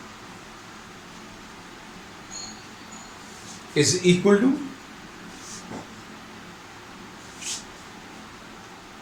इज इक्वल टू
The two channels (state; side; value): identical; both; correlation 1.00